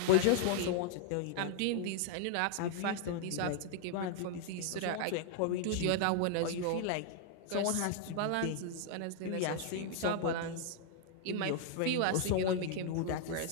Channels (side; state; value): both; different; correlation 0.00